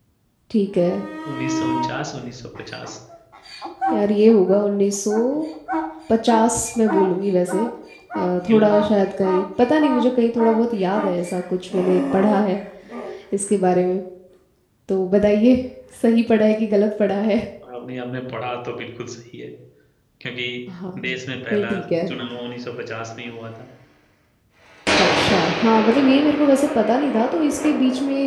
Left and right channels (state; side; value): identical; both; correlation 1.00